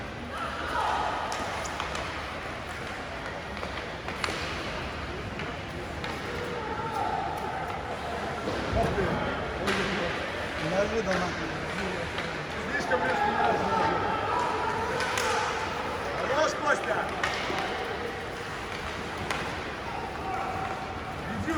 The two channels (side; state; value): both; identical; correlation 1.00